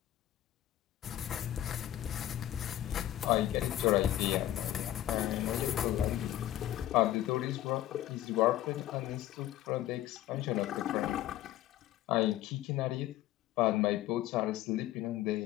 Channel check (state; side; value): quieter; right; 13.5 dB